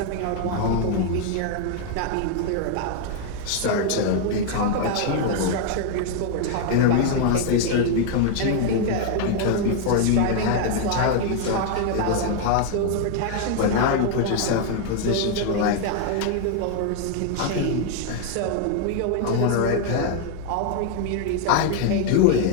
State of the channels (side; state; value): both; different; correlation 0.00